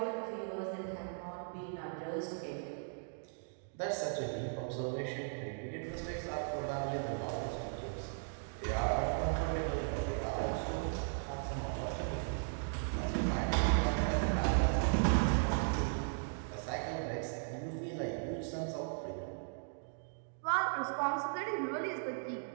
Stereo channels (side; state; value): left; silent; digital silence